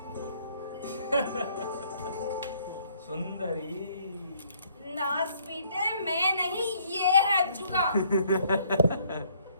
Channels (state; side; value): inverted; both; correlation -0.64